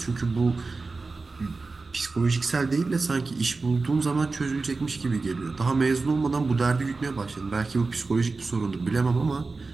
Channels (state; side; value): quieter; left; 3.9 dB